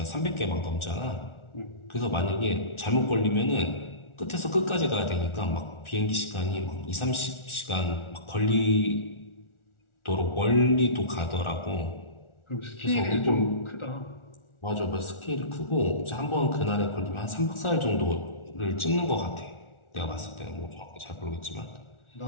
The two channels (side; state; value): right; late; 1.4 ms